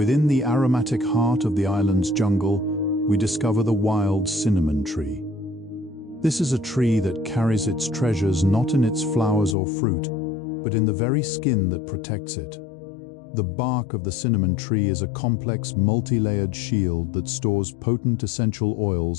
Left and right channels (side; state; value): right; drops out; at 9.6 s